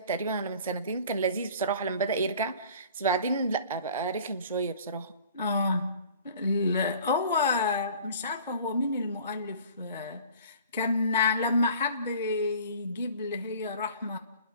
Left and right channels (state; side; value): inverted; both; correlation -0.47